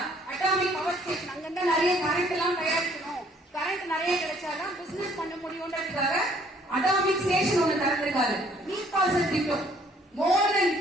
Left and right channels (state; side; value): normal; both; correlation 0.61